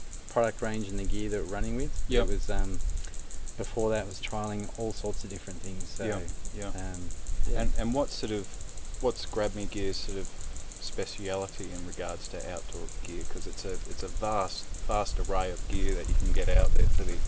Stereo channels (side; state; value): both; identical; correlation 1.00